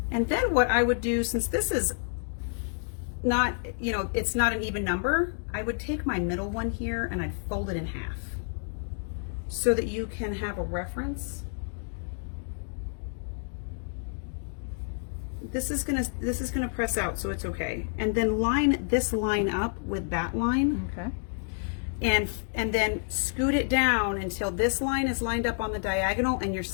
and then what I would do, since this is not, it's not an even number, I would take my middle one here and I'd fold it in half so that you can have a reference. This is gonna press out, so it's okay. And then line this line up with that line. Okay. And then scoot it down until this line is lined up on the diagonal and your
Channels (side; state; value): right; silent; digital silence